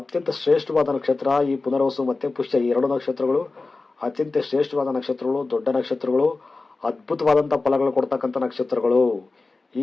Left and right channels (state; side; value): quieter; right; 3.6 dB